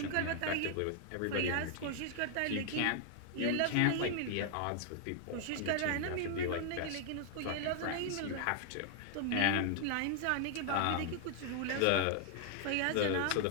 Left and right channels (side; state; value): both; different; correlation 0.00